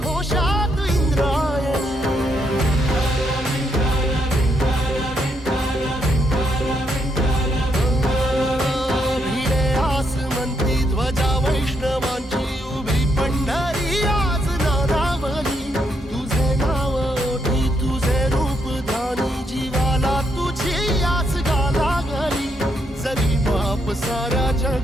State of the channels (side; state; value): both; normal; correlation 0.77